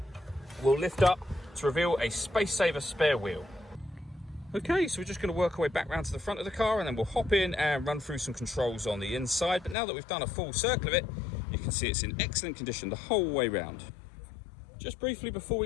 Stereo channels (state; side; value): drops out; right; at 9.8 s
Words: will lift up to reveal a space saver spare wheel. Okay, so we're just going to work our way back round to the front of the car, and then we'll hop in and run through some controls on the inside. But now that we've done a full circle of it, you can see it's in excellent condition the whole way round. Just briefly before